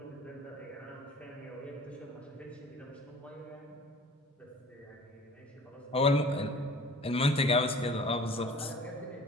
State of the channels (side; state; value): both; normal; correlation 0.46